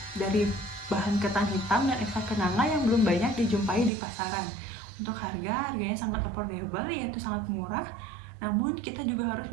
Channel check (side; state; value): left; drops out; at 3.9 s